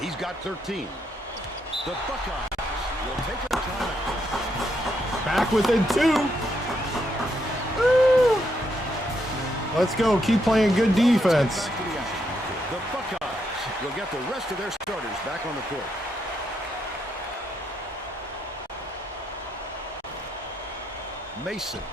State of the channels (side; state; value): both; normal; correlation 0.78